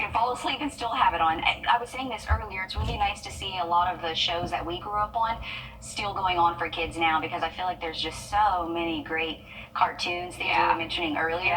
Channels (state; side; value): identical; both; correlation 1.00